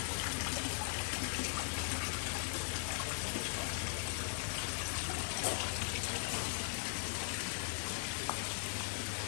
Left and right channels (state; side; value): silent; right; digital silence